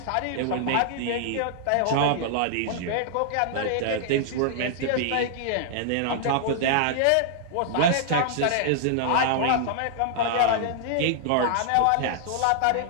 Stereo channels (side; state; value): both; different; correlation -0.01